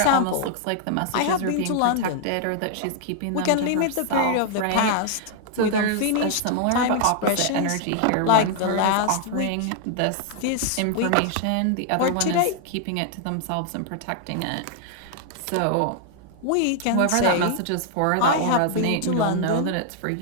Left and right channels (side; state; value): both; different; correlation 0.00